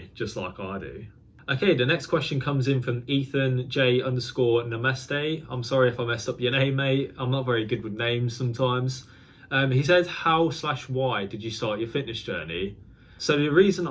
just like I do. Okay, the next question comes in from Ethan J underscore Namaste. I'm sorry if I messed up your name, mate. I'm not very good with names sometimes. He said, how/why did you start your fitness journey? So the reason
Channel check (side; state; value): both; identical; correlation 1.00